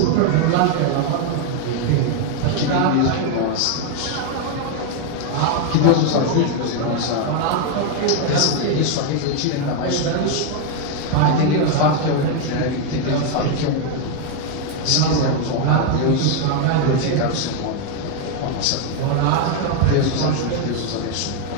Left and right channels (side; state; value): both; different; correlation 0.01